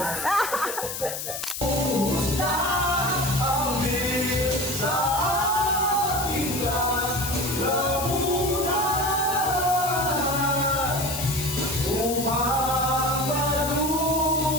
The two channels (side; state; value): left; noise; hiss, 6 dB below the sound